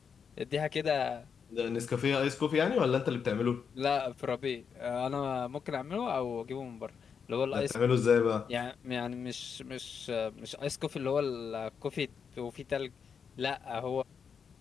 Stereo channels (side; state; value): right; quieter; 6.6 dB